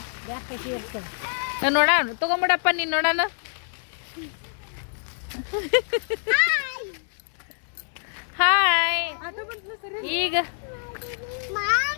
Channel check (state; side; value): silent; right; 61 dB below the other